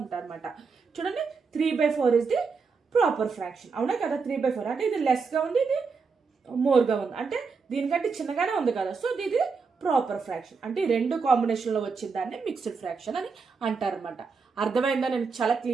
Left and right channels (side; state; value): left; quieter; 5.0 dB